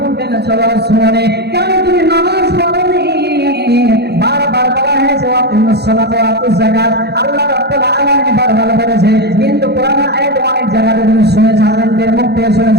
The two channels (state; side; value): late; left; 0.48 ms